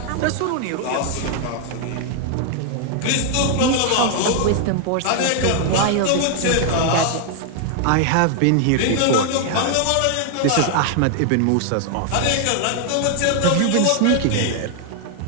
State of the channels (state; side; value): different; both; correlation 0.00